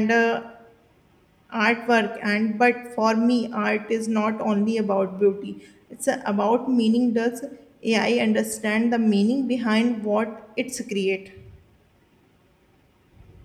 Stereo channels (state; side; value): identical; both; correlation 1.00